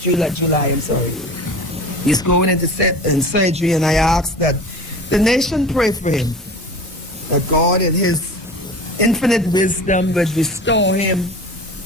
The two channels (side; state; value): both; normal; correlation 0.36